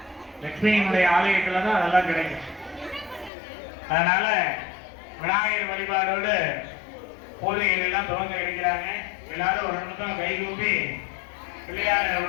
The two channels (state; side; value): drops out; right; at 3.3 s